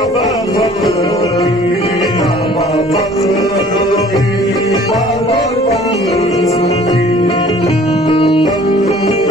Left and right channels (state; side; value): normal; both; correlation 0.52